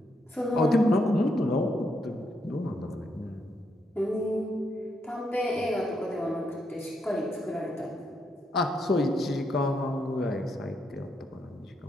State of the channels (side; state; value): both; normal; correlation 0.78